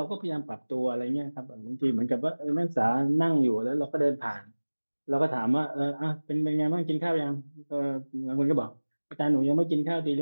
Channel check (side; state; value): both; inverted; correlation -1.00